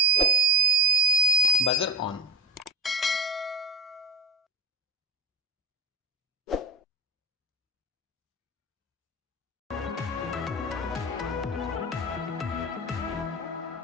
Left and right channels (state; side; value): normal; both; correlation 0.20